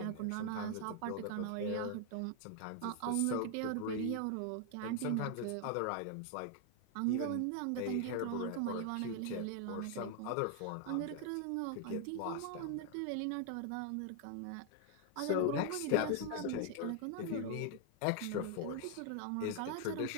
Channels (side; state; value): both; different; correlation 0.00